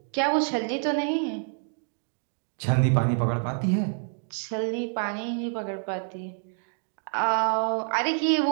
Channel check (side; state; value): left; silent; 56 dB below the other